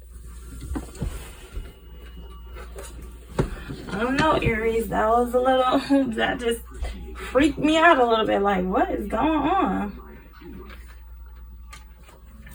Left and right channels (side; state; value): both; identical; correlation 1.00